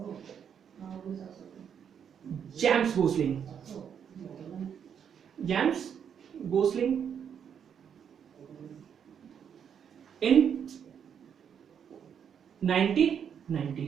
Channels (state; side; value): quieter; left; 8.0 dB